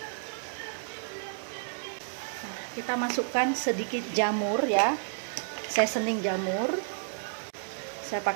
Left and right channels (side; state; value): left; silent; digital silence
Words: Nah, kita masukkan sedikit jamur ya, seasoning jamur. Saya